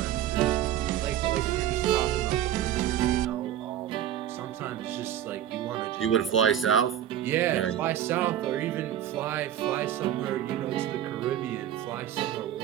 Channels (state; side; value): quieter; left; 11.2 dB